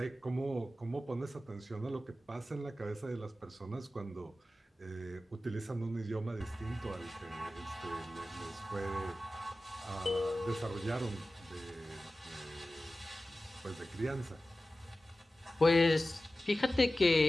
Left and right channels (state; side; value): normal; both; correlation 0.95